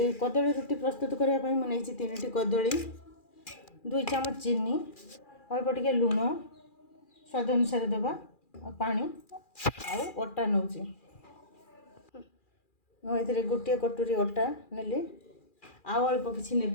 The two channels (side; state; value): right; late; 2.4 ms